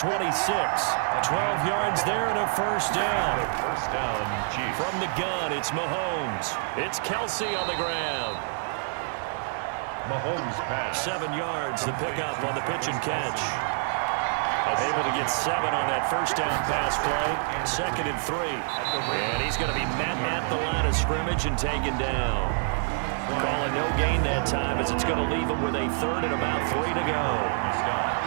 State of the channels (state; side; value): silent; left; digital silence